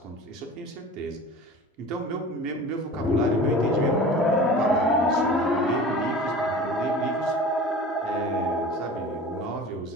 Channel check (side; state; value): both; normal; correlation 0.38